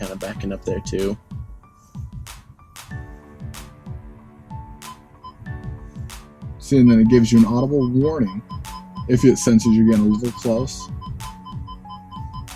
of backing up there too. See, and then it gives you an audible warning if it senses you're getting a little close.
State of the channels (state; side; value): identical; both; correlation 1.00